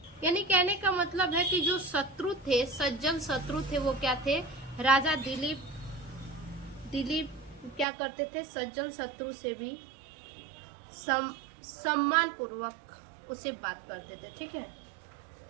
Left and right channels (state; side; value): drops out; left; at 7.9 s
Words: यानी कहने का मतलब है कि जो शत्रु थे, सज्जन शत्रु थे, वो क्या थे, राजा दिलीप क्या करते थे, सज्जन शत्रु से भी सम्मान पूर्वक उसे बात करते थे, ठीक है।